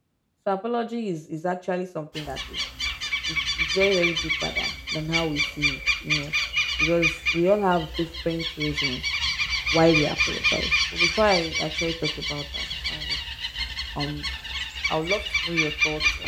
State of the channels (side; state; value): both; identical; correlation 1.00